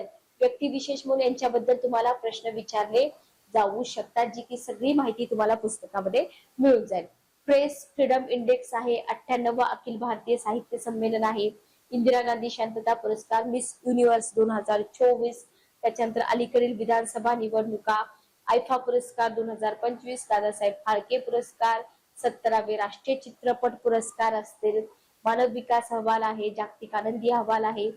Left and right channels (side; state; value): both; identical; correlation 1.00